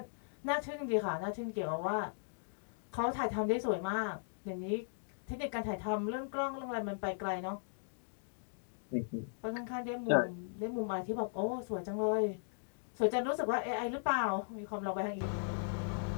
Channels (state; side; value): silent; right; digital silence